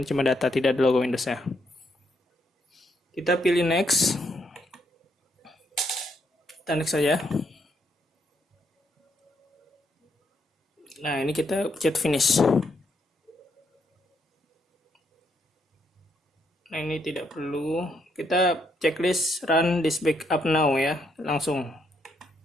ini cuma data, tidak ada logo Windows-nya. Kita pilih next. Kita next saja. Nah, ini kita pencet finish. Nah, ini tidak perlu. Kita checklist run this backup now ya, langsung.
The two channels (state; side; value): normal; both; correlation 0.76